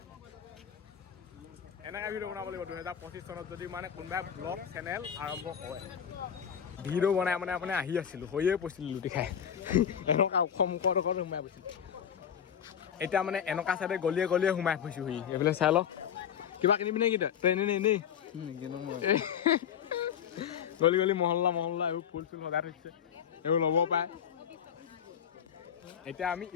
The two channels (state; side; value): quieter; right; 8.5 dB